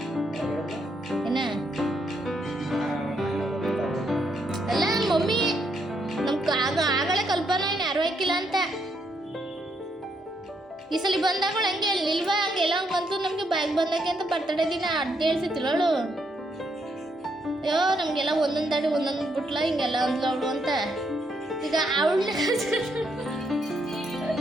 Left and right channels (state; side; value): normal; both; correlation 0.76